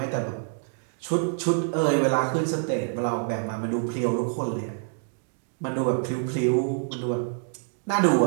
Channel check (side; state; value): left; silent; digital silence